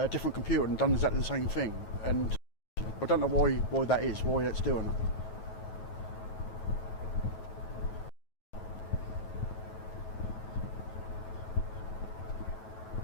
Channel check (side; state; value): right; late; 9.3 ms